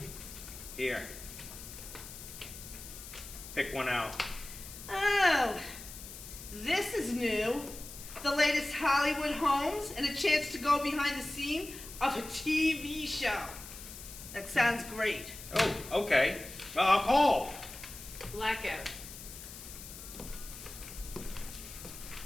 Here. Pick one out. Oh, this is new. The latest Hollywood homes and a chance to go behind the scene of a TV show. That sounds great. Oh, okay. Well, I'll call. Blackout.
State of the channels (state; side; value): noise; left; hiss, 13 dB below the sound